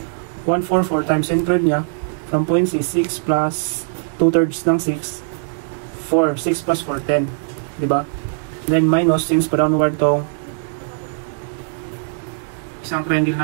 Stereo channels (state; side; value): silent; left; digital silence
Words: 144 times centroid niya from point C, 6 plus 2/3 ng 6, 4. 6 plus 4, 10. Di ba? Then minus, since pa downward tong isang triangle